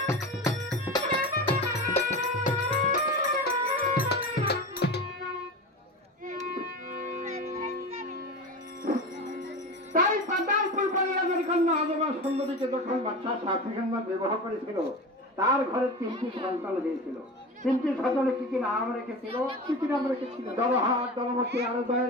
বিবাহ করেছিল, তার ঘরে 3টি সন্তান হয়েছিল। 3টি সন্তানে কি কি নাম রেখেছিল? কি কি নাম রেখেছিল? জলহাট, জলমতি, আরো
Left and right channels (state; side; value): normal; both; correlation 0.28